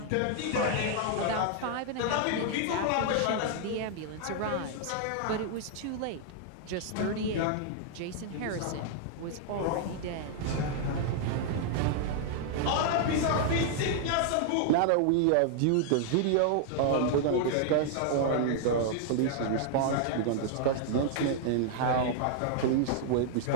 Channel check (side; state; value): both; different; correlation -0.01